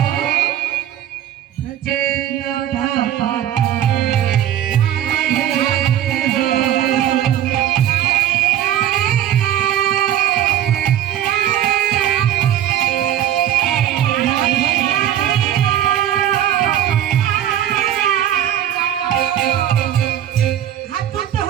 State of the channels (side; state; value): left; quieter; 11.1 dB